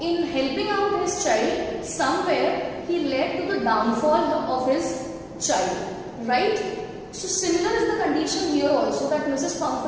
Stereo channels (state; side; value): identical; both; correlation 1.00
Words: in helping out his child, somewhere he led to the downfall of his child. Right? So, similar is the condition here also, that Mrs.